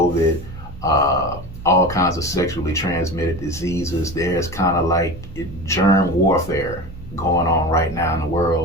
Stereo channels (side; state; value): both; normal; correlation 0.30